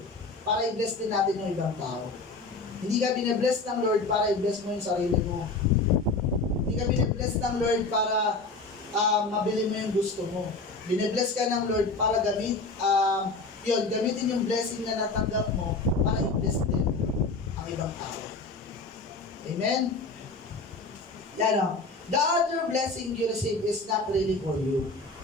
para i-bless din natin yung ibang tao. Hindi ka bine-bless ng Lord para i-bless mo yung sarili mo. Hindi ka bine-bless ng Lord para mabili mo yung gusto mo. Bine-bless ka ng Lord para gamitin yung blessing na natanggap mo para i-bless din ang ibang tao. Amen? Yan o. The other blessing you receive is not really for you.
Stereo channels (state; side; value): quieter; right; 3.5 dB